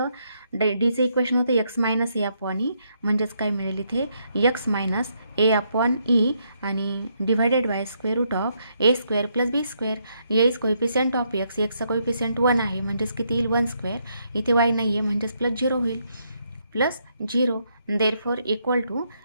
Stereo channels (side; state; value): both; inverted; correlation -0.76